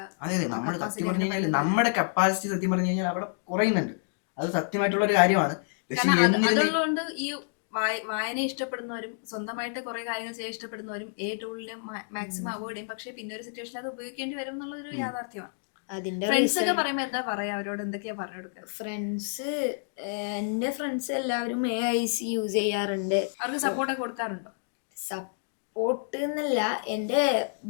അതെ നമ്മൾ സത്യം പറഞ്ഞു കഴിഞ്ഞാൽ നമ്മുടെ കപ്പാസിറ്റി സത്യം പറഞ്ഞു കഴിഞ്ഞാൽ അവിടെ കുറയുന്നുണ്ട്. അത് സത്യമായിട്ടുള്ള ഒരു കാര്യമാണ്. പക്ഷെ അതുകൊണ്ട് ഈ വായന ഇഷ്ടപ്പെടുന്നവരും സ്വന്തമായിട്ട് കുറെ കാര്യങ്ങൾ ചെയ്യാൻ ഇഷ്ടപ്പെടുന്നവരും ടൂളിനെ മാക്സിമം അവോയ്ഡ് ചെയ്യും. പക്ഷെ പിന്നെ ഒരു സിറ്റുവേഷനിൽ അത് ഉപയോഗിക്കേണ്ടി വരും എന്നുള്ളൊരു യാഥാർത്ഥ്യമാണ്. ഫ്രണ്ട്സ് ഒക്കെ പറയുമ്പോ എന്താ പറയാ, അവരോട് എന്തൊക്കെയാ പറഞ്ഞു കൊടുക്കുക? എന്റെ ഫ്രണ്ട്സ് എല്ലാവരും AIC യൂസ് ചെയ്യാറുണ്ട്. അവർക്ക് സപ്പോർട്ടൊക്കെ കൊടുക്കാറുണ്ടോ? സപ്പോർട്ട് എന്നല്ല, എൻ്റെ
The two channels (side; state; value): right; silent; digital silence